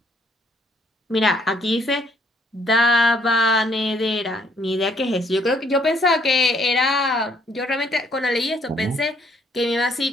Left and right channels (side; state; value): both; normal; correlation 0.66